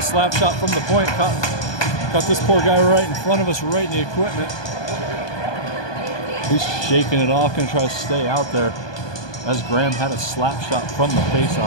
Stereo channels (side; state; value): right; late; 1.2 ms